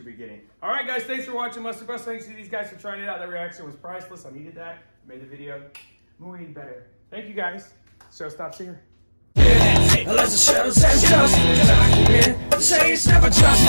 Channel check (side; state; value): both; inverted; correlation -1.00